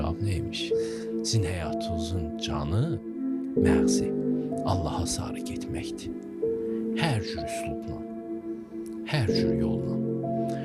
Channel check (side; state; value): both; identical; correlation 1.00